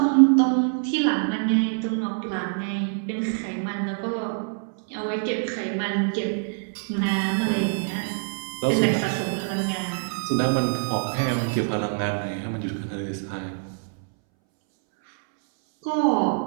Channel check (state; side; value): silent; left; 62 dB below the other